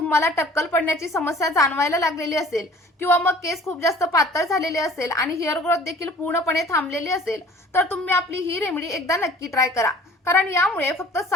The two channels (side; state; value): both; normal; correlation 0.49